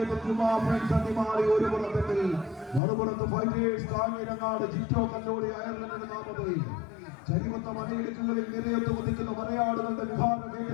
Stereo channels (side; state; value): right; drops out; at 2.8 s